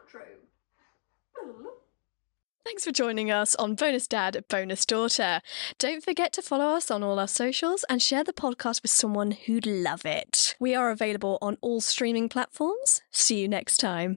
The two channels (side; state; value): right; silent; 59 dB below the other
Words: outro. Thanks for joining us on Bonus Dad, Bonus Daughter. Don't forget to follow us on all our socials and share the podcast with someone who'd love it. We are available on all streaming platforms. See you next